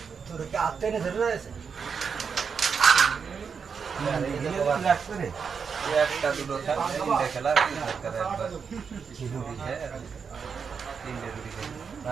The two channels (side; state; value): left; quieter; 6.1 dB